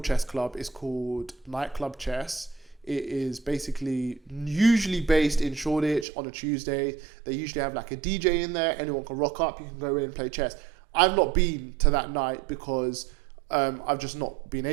chess club. It's called Nightclub Chess. It is basically usually based in Shoreditch on a Tuesday. They usually have like a DJ in there. Anyone can rock up. You can go in and play chess. I've not been to that night because I've just not been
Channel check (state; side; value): drops out; left; at 6.1 s